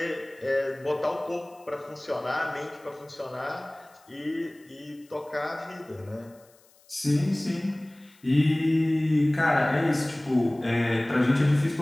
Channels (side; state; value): left; noise; hiss, 30 dB below the sound